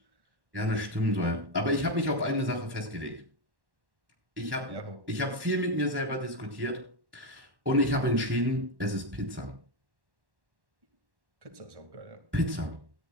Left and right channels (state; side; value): late; left; 1.1 ms